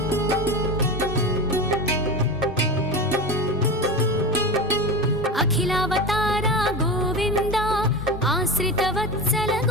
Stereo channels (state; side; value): normal; both; correlation 0.24